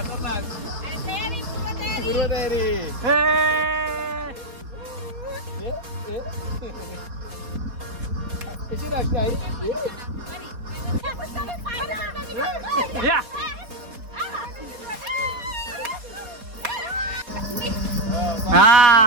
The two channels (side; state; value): left; late; 4.2 ms